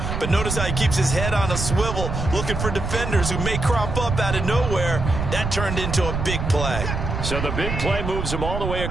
But notice how he keeps his head on a swivel, looking for defenders who may crop up out of nowhere. That turned into a big play. So the big play moves him all the way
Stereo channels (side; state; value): right; noise; rumble, 3 dB below the sound